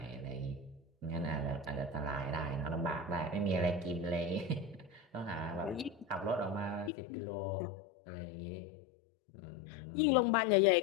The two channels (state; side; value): drops out; right; at 6.9 s